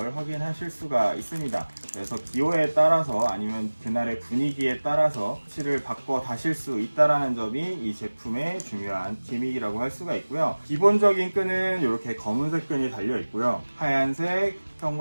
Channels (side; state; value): both; inverted; correlation -1.00